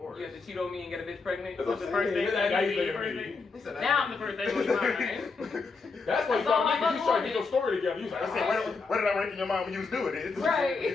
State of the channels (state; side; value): quieter; right; 4.4 dB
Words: You have to cheat on me and get a bitch pregnant. That's That's the what I'm first thing. saying. That Now you you the think first of thing. He said that- Now I'm the first thing on your mind. That's why you That's all got I me. You trying to wanted. get your story together. You was like, I said, where did I rank in your mind when you was doing it? Right.